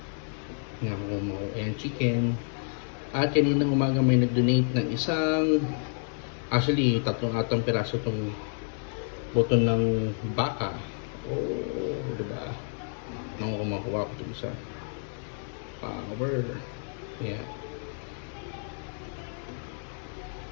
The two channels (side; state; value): right; silent; 58 dB below the other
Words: Ayan, chicken. At kaninang umaga may nag-donate ng tatlong piraso itong buto ng baka. Oh, diba? Nang kumakuha ko ito isa. Power. Yeah.